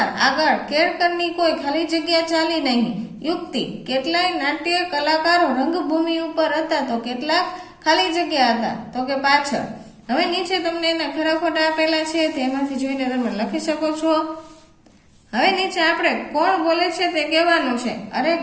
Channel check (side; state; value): both; identical; correlation 1.00